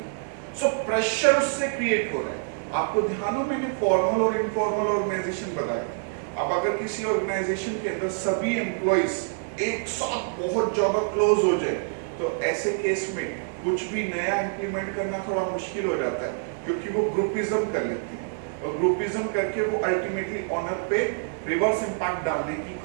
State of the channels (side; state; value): left; silent; digital silence